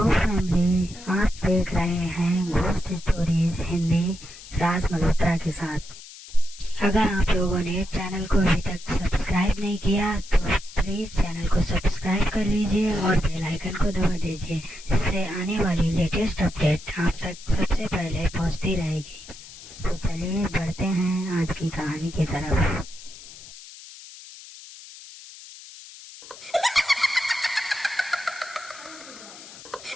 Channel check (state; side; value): noise; left; hiss, 17 dB below the sound